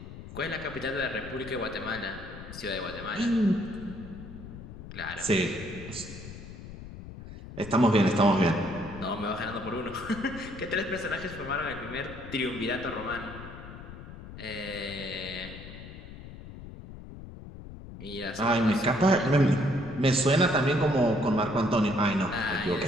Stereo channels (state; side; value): noise; left; rumble, 13 dB below the sound